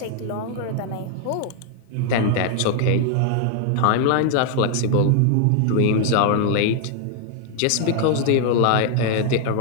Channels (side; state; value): both; different; correlation 0.00